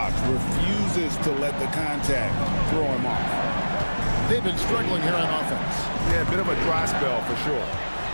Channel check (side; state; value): both; inverted; correlation -1.00